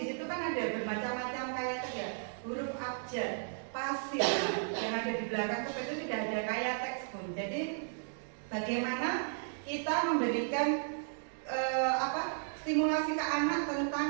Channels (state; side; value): silent; left; digital silence